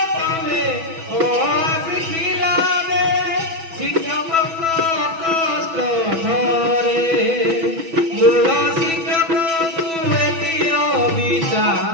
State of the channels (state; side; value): late; left; 6.1 ms